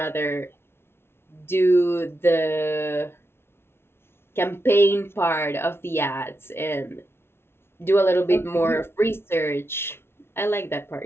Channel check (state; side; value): late; right; 0.12 ms